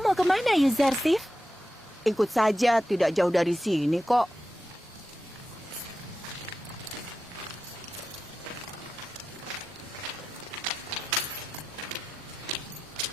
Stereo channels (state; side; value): normal; both; correlation 0.91